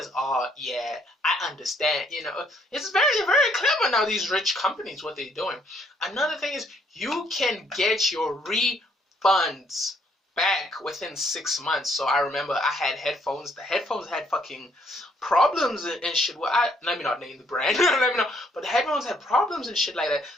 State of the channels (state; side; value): normal; both; correlation 0.68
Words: "Oh yeah, I understand." It's very, very clever now. These rich companies, what they're doing. Another thing is, you can get your refunds back within 6 months. So I remember I had headphones. The headphones had fucking problems and shit. Well, let me not name the brand. Let me know. But the headphones had problems and shit like that.